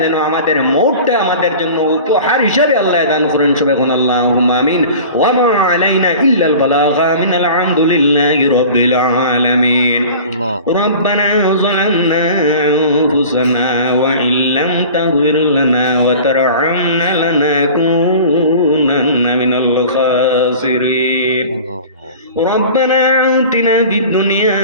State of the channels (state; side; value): inverted; both; correlation -0.40